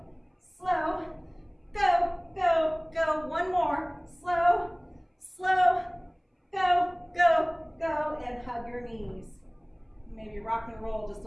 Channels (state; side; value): identical; both; correlation 1.00